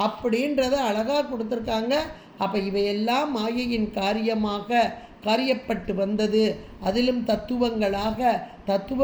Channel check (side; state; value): both; identical; correlation 1.00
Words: அப்படின்றத அழகாக கொடுத்துருக்காங்க. அப்போ இவையெல்லாம் மாயையின் காரியப்பட்டு வந்தது. அதிலும் தத்துவங்களாக,